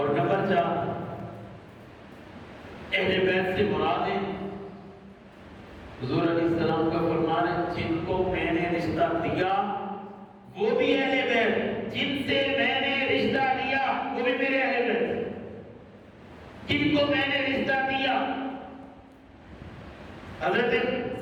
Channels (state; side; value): identical; both; correlation 1.00